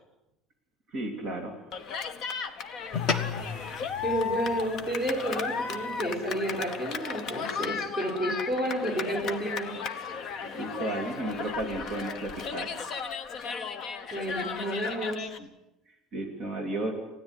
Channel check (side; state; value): both; normal; correlation 0.47